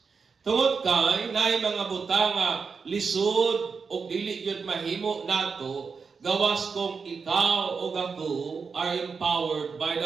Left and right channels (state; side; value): quieter; left; 5.3 dB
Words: Tungod kay naay mga butang nga lisod o dili gyud mahimo nato gawas kung ikaw o ako are empowered by